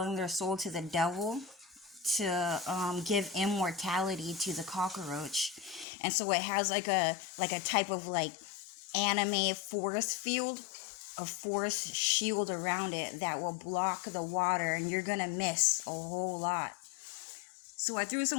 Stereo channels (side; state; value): right; drops out; at 5.9 s